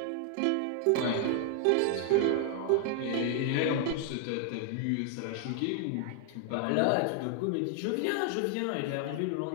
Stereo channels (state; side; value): different; both; correlation 0.00